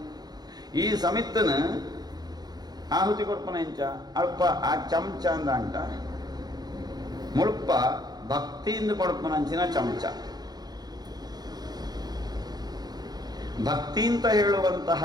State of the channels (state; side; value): late; left; 0.19 ms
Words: ಈ ಸಮಿತ್ತನ ಆಹುತಿ ಕೊರ್ಪನ ಇಂಚ ಅಲ್ಪ ಆ ಚಮಚ ಅಂದ ಅಂಟ ಮುಳ್ಪ ಭಕ್ತಿಯಿಂದ ಕೊಡ್ಪನಂಚಿನ ಚಮಚ. ಭಕ್ತಿ ಅಂತ ಹೇಳುವಂತಹ